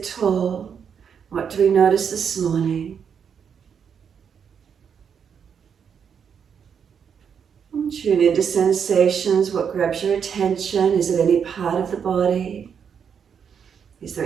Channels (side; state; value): left; quieter; 7.3 dB